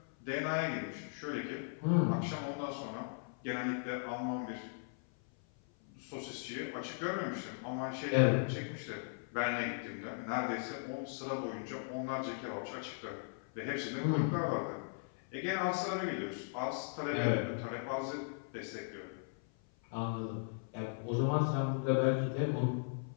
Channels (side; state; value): right; silent; 53 dB below the other